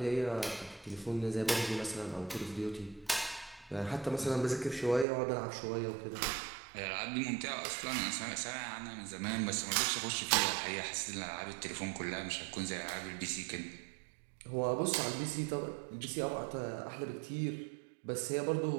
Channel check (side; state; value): left; drops out; at 5.1 s